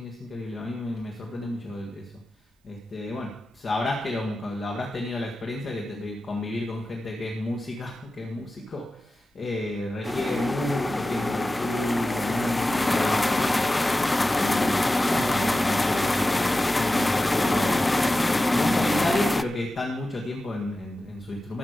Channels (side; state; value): both; normal; correlation 0.94